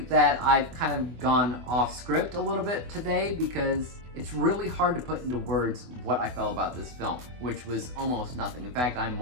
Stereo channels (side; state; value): left; late; 24 ms